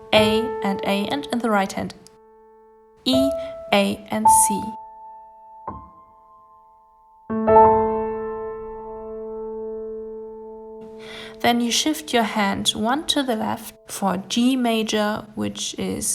A, and in the right hand E, A, and C. Then you shift your hand one to the left for G major, which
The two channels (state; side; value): identical; both; correlation 1.00